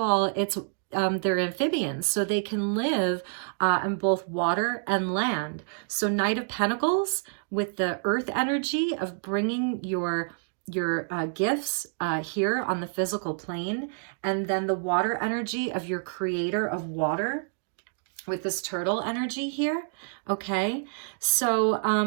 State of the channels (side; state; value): left; silent; digital silence